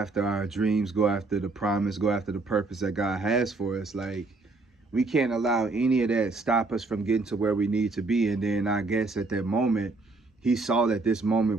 our dreams, go after the promise, go after the purpose that God has for us. Like, we can't allow any of that stop us from getting to where we need to be. And then I guess at that moment, he saw that this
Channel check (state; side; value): quieter; left; 3.5 dB